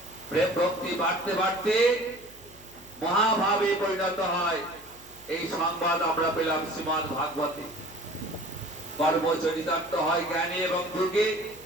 প্রেম ভক্তি বাড়তে বাড়তে মহাভাবে পরিণত হয়। এই সংবাদ আমরা পেলাম শ্রীমদ্ ভাগবতে। কর্ম চরিতার্থ হয় জ্ঞানে এবং যোগে,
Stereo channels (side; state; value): left; noise; hum, 23 dB below the sound